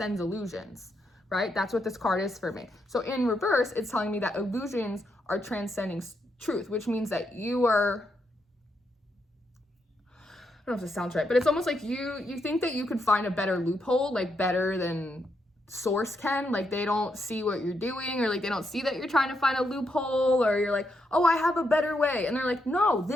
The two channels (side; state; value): both; normal; correlation 0.80